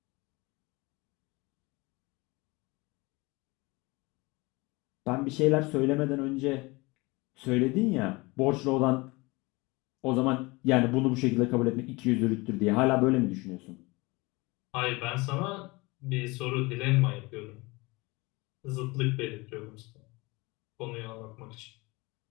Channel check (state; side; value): quieter; right; 24.2 dB